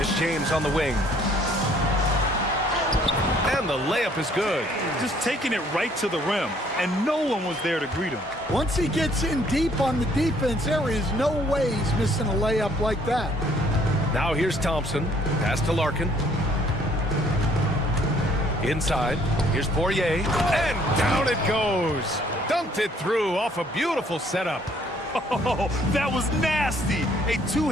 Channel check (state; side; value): normal; both; correlation 0.62